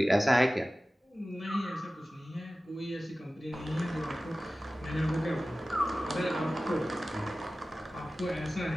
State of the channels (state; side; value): normal; both; correlation 0.96